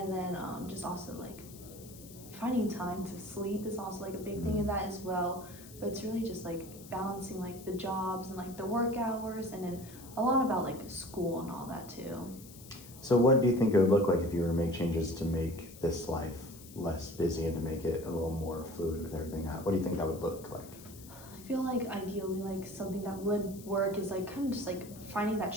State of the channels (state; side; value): noise; left; hiss, 18 dB below the sound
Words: then just also like finding time to sleep is also like a big thing in that as well. But it's really just like balancing like the jobs and like the work hours, and then a lot about like school and all that too. So what do you think it would look like if you were to make changes to make this life less busy and to make it a little more fluid with everything? What do you think that would look like? I feel like ideally like something that would work is like kind of just like finding that